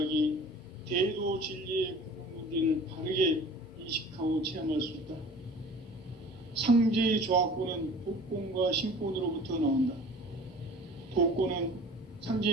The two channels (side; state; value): both; normal; correlation 0.44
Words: 대도 진리의 궁극 문제를 바르게 인식하고 체험할 수 있다. 상제의 조화권은 독권과 신권으로부터 나온다. 독권은